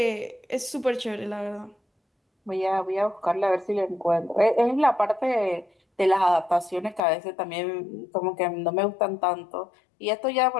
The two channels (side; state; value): right; drops out; at 7.0 s